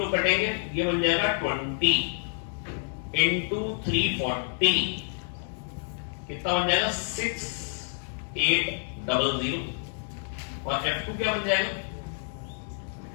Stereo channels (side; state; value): right; silent; 59 dB below the other